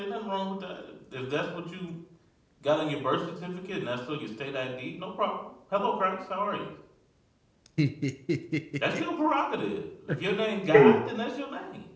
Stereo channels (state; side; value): identical; both; correlation 1.00